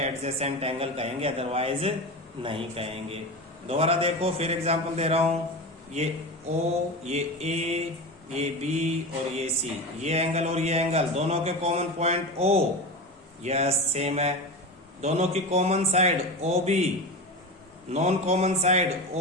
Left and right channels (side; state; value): both; normal; correlation 0.25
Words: एंगल कहेंगे, अदरवाइज नहीं कहेंगे। दोबारा देखो, फिर एग्जांपल दे रहा हूं, ये O, ये A, ये B और ये C, ये एंगल और ये एंगल दोनों के common point O, yes same है। दोनों की common side OB, non common side